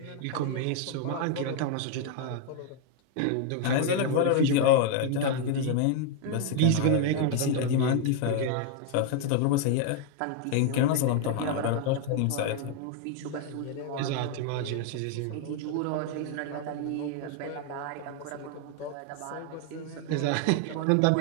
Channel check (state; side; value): different; both; correlation 0.00